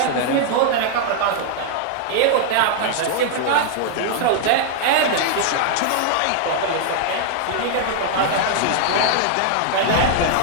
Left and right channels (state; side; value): different; both; correlation -0.01